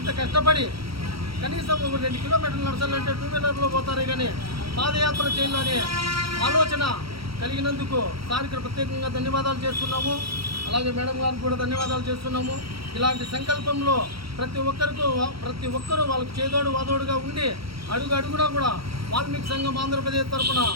కష్టపడి కనీసం ఒక 2 కిలోమీటర్లు నడచాలంటే 2 వీలర్లో పోతారే కానీ పాదయాత్ర చేయాలనే ఆలోచన కలిగినందుకు సార్కి ప్రత్యేకంగా ధన్యవాదాలు చేస్తున్నాము. అలాగే మేడం గారికి కూడా ధన్యవాదాలు చేస్తున్నాము. ఇలాంటి సంకల్పంలో ప్రతి ఒక్కరూ వాళ్ళకి చేదోడు వాదోడుగా ఉండి అడుగు అడుగునా కూడా వాల్మీకి సంఘం ఆంధ్రప్రదేశ్ తరఫున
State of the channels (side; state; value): left; late; 0.75 ms